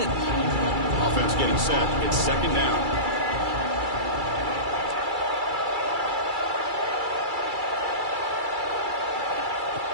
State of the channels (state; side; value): late; left; 2.3 ms